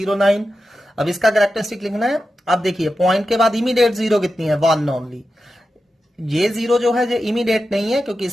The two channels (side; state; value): both; normal; correlation 0.91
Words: अब इसका कैरेक्टरिस्टिक लिखना है। अब देखिए पॉइंट के बाद इमीडिएट 0 कितनी है, 1 ओनली। ये 0 जो है ये इमीडिएट नहीं है क्योंकि